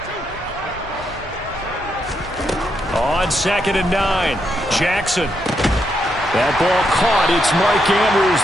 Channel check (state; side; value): normal; both; correlation 0.80